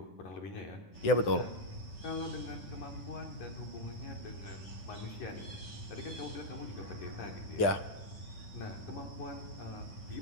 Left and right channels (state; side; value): late; right; 10 ms